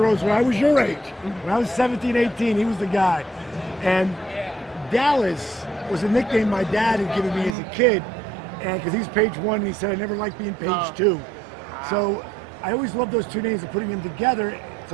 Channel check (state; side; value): drops out; left; at 7.6 s